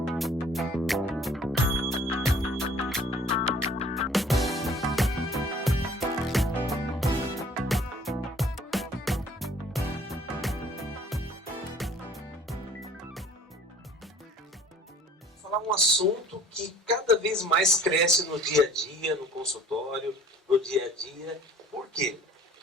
um assunto que cada vez mais cresce no dia a dia, no consultório, no dia a dia. Por quê?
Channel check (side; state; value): both; normal; correlation 0.52